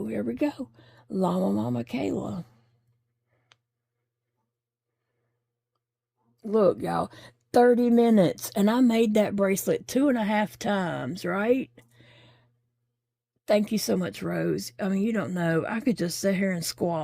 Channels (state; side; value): identical; both; correlation 1.00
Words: here we go. Llama, Mama, Kayla. Look, y'all. 30 minutes. And I made that bracelet 2.5 times, right? Thank you so much, Rose. I mean, you don't know. I could just sit here and